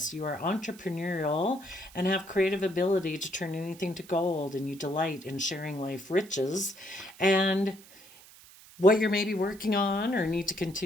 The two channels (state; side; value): noise; right; hiss, 22 dB below the sound